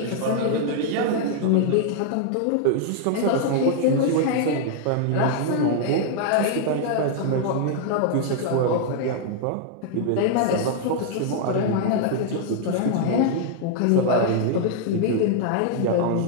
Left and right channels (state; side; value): different; both; correlation 0.00